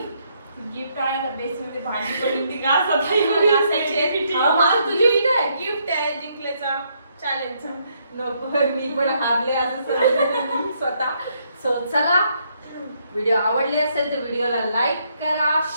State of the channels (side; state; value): both; inverted; correlation -0.73